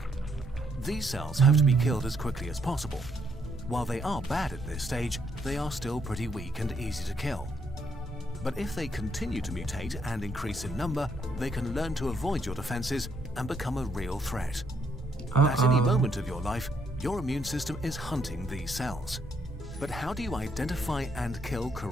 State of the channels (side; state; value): both; normal; correlation 0.73